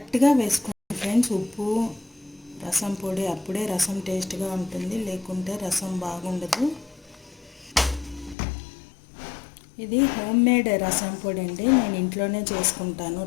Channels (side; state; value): right; drops out; at 8.3 s